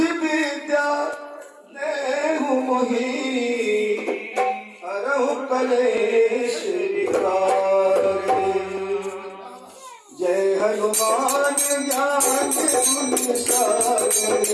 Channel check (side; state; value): both; identical; correlation 1.00